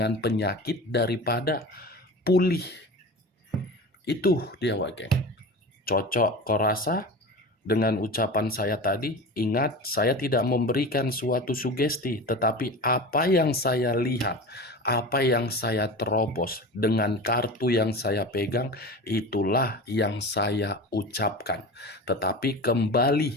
penyakit daripada pulih. Itu dia, Wak. Cocok kau rasa dengan ucapan saya tadi? Ingat, saya tidak memberikan suatu sugesti, tetapi apa yang saya lihat, apa yang saya terobos dengan kartu yang saya pegang, itulah yang saya ucapkan. Tetapi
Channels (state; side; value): normal; both; correlation 0.31